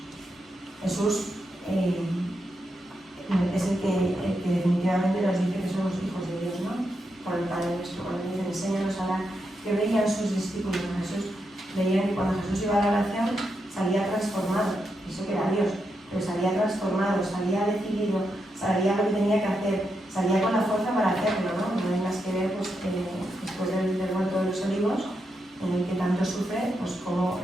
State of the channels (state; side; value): normal; both; correlation 0.84